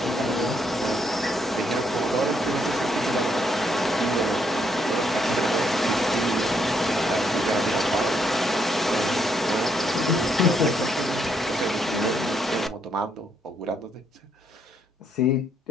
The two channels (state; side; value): normal; both; correlation 0.74